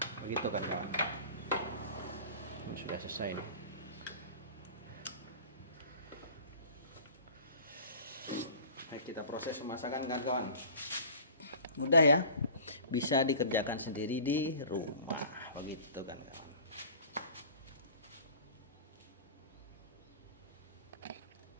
begitu kan kawan. Ini sudah selesai nih. Baik, kita proses pemasakan kan kawan. Mudah ya, bisa dikerjakan sendiri di rumah begitu kan kawan.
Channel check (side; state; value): both; inverted; correlation -0.42